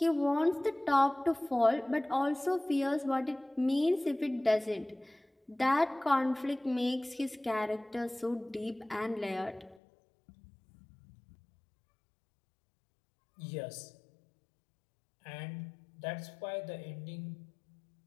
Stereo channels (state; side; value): drops out; right; at 9.8 s